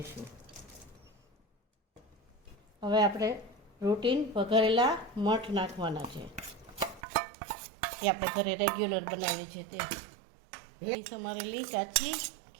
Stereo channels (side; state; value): left; drops out; at 7.0 s